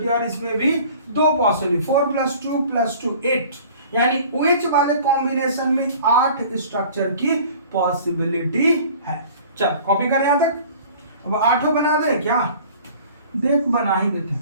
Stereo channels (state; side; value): inverted; both; correlation -0.46